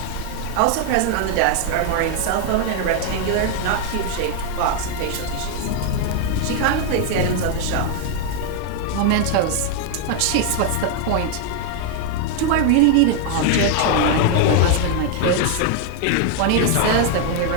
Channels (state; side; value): different; both; correlation 0.00